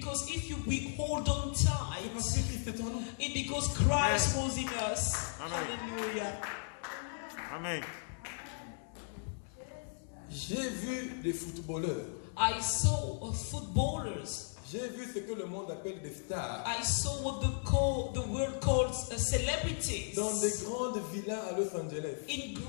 if we hold on C'est tight, parce que Christ est en nous. it's because Christ was in us. Hallelujah. Amen. J'ai vu des footballeurs. I saw footballers. J'ai vu ce que le monde appelle des stars. I saw what the world calls celebrities. Dans des grandes villas à Los Angeles. In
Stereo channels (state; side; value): silent; right; digital silence